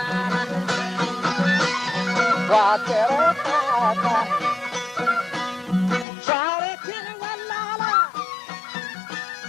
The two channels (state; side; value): drops out; right; at 6.1 s